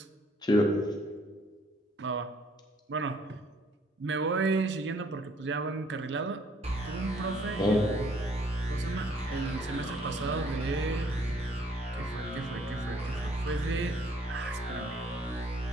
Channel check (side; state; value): both; normal; correlation 0.63